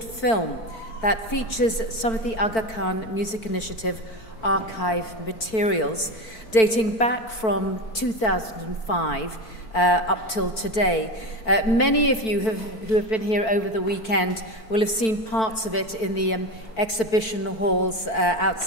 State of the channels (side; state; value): right; late; 4.5 ms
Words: film that features some of the Aga Khan Music Initiative archive materials dating back from 2005 up till today. Many of you who have been here over the weekend will have seen parts of it in the exhibition halls